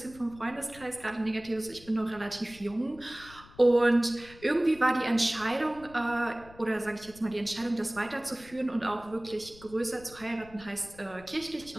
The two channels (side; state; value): left; noise; rumble, 21 dB below the sound